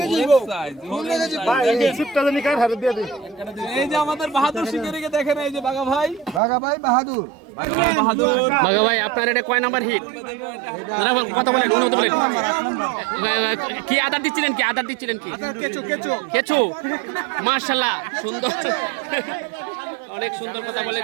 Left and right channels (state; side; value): drops out; left; at 6.4 s